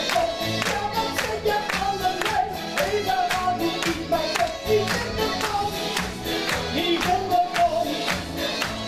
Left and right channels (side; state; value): both; identical; correlation 1.00